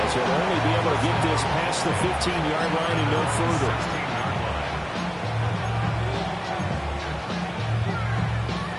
as he'll only be able to get this past the 15-yard line and no further.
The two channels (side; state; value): both; identical; correlation 1.00